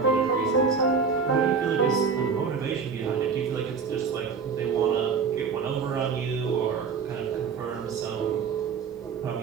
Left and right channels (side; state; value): left; quieter; 5.7 dB